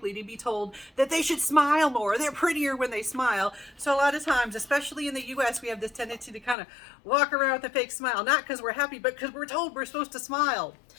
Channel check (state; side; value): drops out; right; at 6.6 s